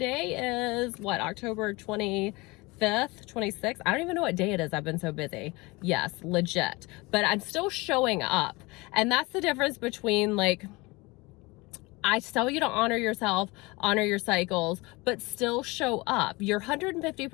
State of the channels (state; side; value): quieter; right; 23.9 dB